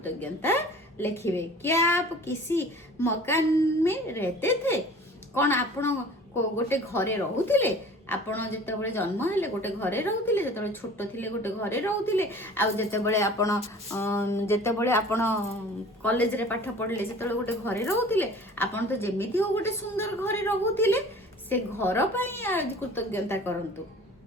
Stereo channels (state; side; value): normal; both; correlation 0.45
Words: लिखिवे। क्या आप किसी मकान में रहते थे कौन आपण गोटे घरे रहूतिले आपण जते बळे जन्म हेले गोटे घरे रहूतिले जते बळे छोट थिले गोटे घरे रहूतिले आ जते बळे आपण कॉलेज रे पाठ पढले जते बळे गोटे घरे रहूतिले आपण तो जेमिति हो गोटे सुंदर घरे रहूतिले से घर पई आज कृतज्ञता करंतु।